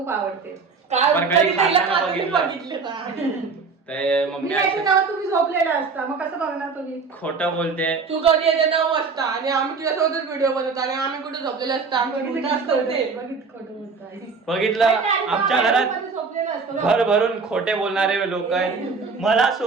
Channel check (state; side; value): quieter; left; 4.8 dB